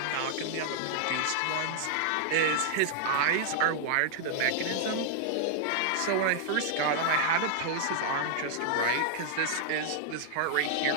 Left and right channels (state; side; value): different; both; correlation -0.01